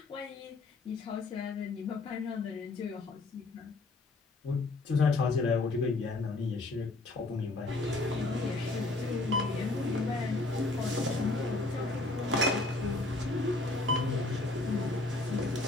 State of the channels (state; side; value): quieter; right; 3.1 dB